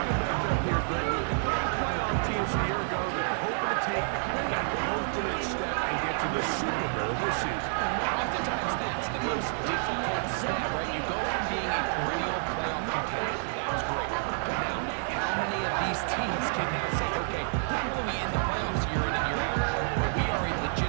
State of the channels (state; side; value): silent; left; digital silence